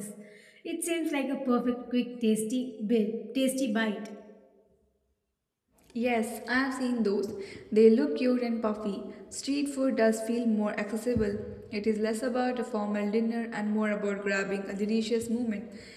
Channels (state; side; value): identical; both; correlation 1.00